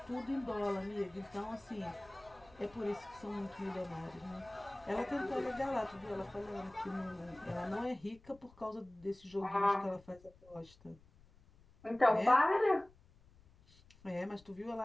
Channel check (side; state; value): left; noise; rumble, 26 dB below the sound